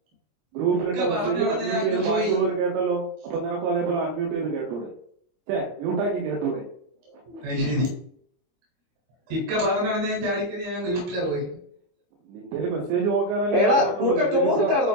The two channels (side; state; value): left; late; 25 ms